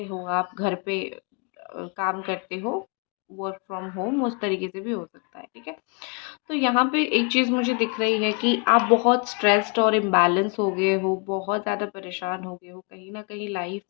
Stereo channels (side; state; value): right; quieter; 34.2 dB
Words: हो, आप घर पे काम करते हो, वर्क फ्रॉम होम, उस तरीके से भी हो सकता है। ठीक है, तो यहाँ पे एक चीज़ मुझे दिख रही है कि आप बहुत स्ट्रेस्ड और इम्बैलेंस हो गए हो, बहुत ज़्यादा परेशान हो गए हो। कहीं ना कहीं लाइफ